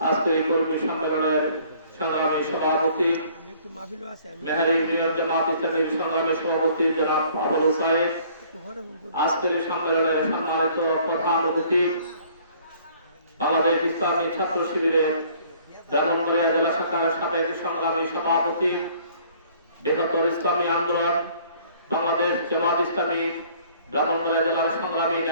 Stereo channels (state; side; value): inverted; both; correlation -0.57